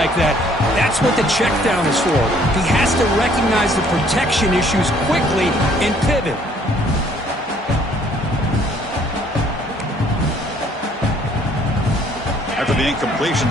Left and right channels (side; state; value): both; normal; correlation 0.61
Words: that, that's what the check down is for. He has to recognize the protection issues quickly and pivot. After the incompletion,